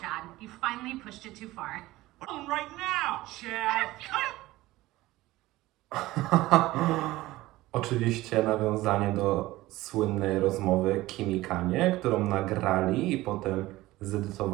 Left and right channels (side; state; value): left; quieter; 17.8 dB